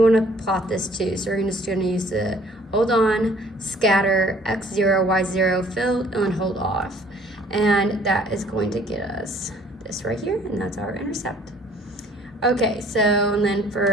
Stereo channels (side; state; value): both; normal; correlation 0.57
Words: want to plot this too. So we're just going to use the hold on, scatter, x0, y0, fill, and hold off. And that is going to get us this right here, and that's our intercept. Okay, so and then